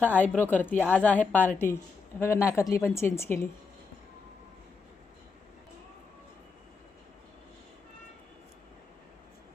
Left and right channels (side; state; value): right; quieter; 4.8 dB